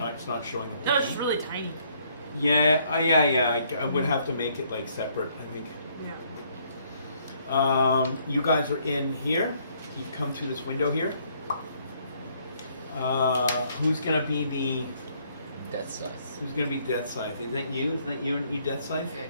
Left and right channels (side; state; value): both; inverted; correlation -0.67